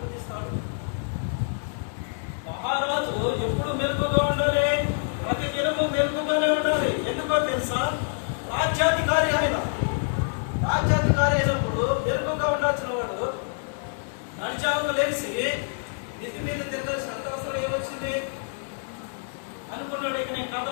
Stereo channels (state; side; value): silent; right; 61 dB below the other